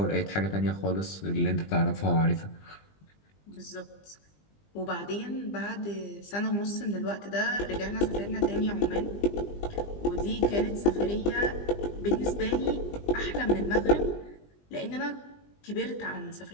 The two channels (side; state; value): right; late; 20 ms